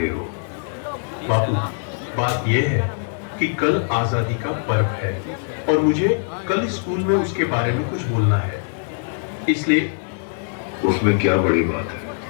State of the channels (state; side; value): silent; right; digital silence